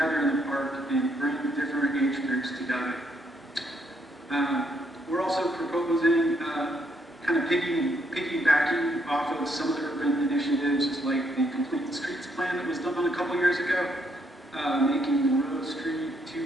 in the park and bring different age groups together. We're also proposing kind of piggybacking off of some of the urban initiatives like the Complete Streets plan that was done a couple years ago, making Monroe Street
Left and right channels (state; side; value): normal; both; correlation 0.73